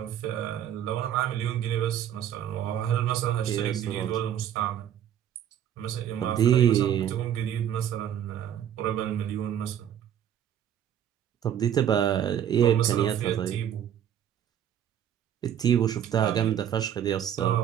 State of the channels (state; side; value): quieter; left; 10.0 dB